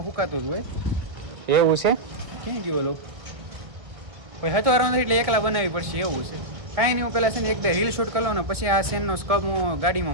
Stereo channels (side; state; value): left; late; 1.8 ms